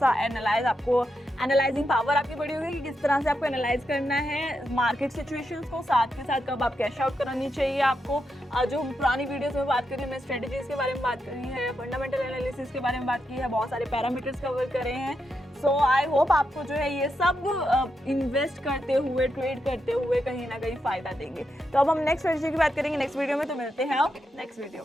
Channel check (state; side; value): normal; both; correlation 0.84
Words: आपको एनालाइजिंग पावर आपकी बड़ी होगी कि किस तरह से आपको एनालाइज करना है मार्केट सिचुएशंस को, साथ के साथ कब आप कैश आउट करानी चाहिए आपको। जो पुरानी वीडियोस में बात करी, हमने स्ट्रेटेजीज के बारे में बात करी है, फंडामेंटल एनालिसिस के बारे में बात की है, बहुत सारे पैरामीटर्स कवर करे हैं। सो आई होप आपको जो है ये सब इन्वेस्ट करते हुए, ट्रेड करते हुए कहीं ना कहीं फायदा देंगे। तो अब हम नेक्स्ट स्ट्रेटेजी की बात करेंगे नेक्स्ट वीडियो में, तो मिलते हैं नेक्स्ट वीडियो